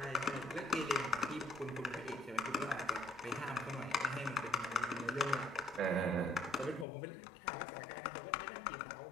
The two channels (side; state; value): right; drops out; at 6.9 s